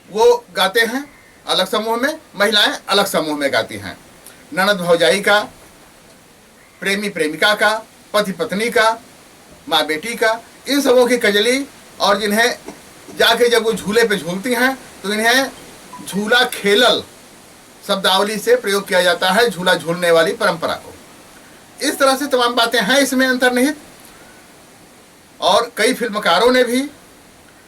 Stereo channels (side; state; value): both; identical; correlation 1.00